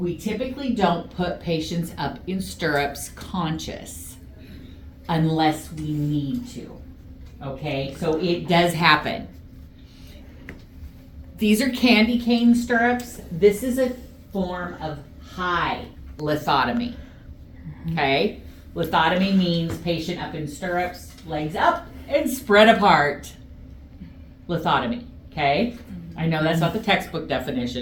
typically don't put patients up in stirrups conscious unless we need to. Okay, so it does happen. These are candy cane stirrups. This is a form of high lithotomy. Okay, lithotomy means patient up in stirrups, legs up and spread apart. Lithotomy, okay? I know that's not the textbook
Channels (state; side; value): identical; both; correlation 1.00